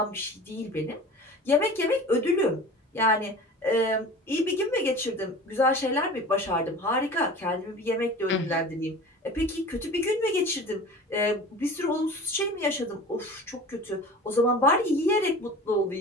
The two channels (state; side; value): normal; both; correlation 0.38